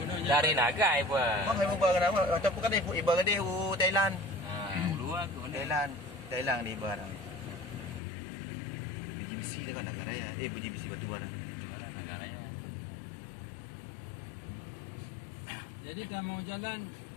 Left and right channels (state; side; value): drops out; right; at 8.0 s